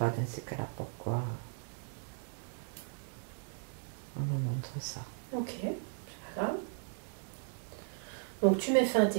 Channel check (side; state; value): left; silent; digital silence